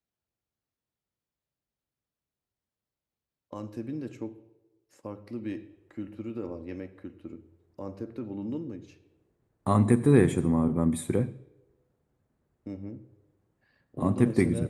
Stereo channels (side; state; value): both; identical; correlation 1.00